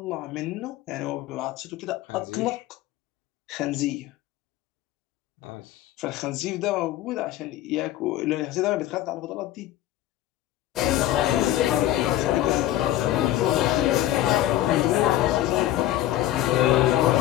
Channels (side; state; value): right; quieter; 14.0 dB